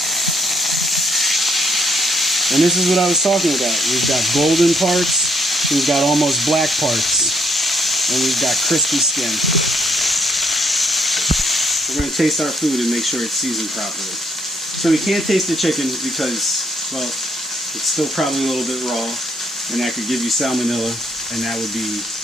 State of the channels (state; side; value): normal; both; correlation 0.69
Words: And this is what I was talking about. We've got golden parts, we've got almost black parts, and we've got crispy skin. We're going to taste our food and make sure it's seasoned properly. So we can't taste the chicken because, well, it's still probably a little bit raw, and that could give you salmonella, and that would